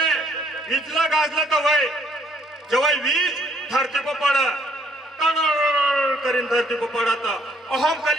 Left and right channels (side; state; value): both; normal; correlation 0.66